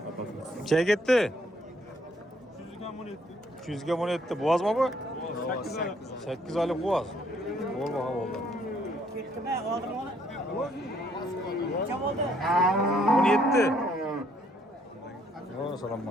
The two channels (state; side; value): normal; both; correlation 0.67